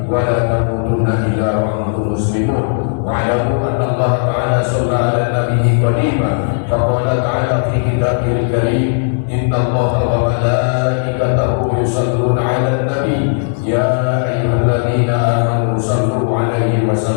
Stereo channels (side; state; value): right; silent; digital silence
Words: wa la tamutunna illa wa antum muslimun. Wa'lamu anna Allah ta'ala shalla 'ala nabiyyi qadiman faqala ta'ala fi kitabihil karim inna Allaha wa malaikatahu yusalluna 'alan nabi ya ayyuhalladzina amanu sallu 'alaihi wa